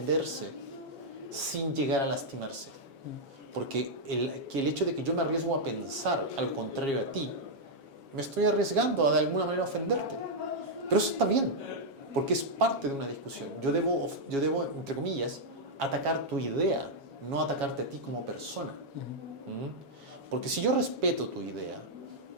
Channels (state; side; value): late; left; 7.3 ms